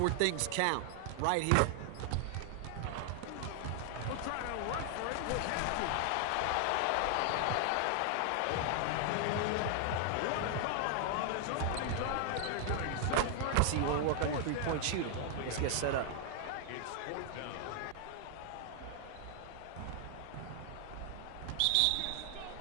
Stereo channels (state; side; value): different; both; correlation 0.00